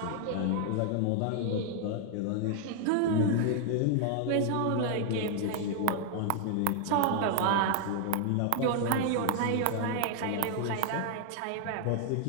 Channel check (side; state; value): both; different; correlation 0.00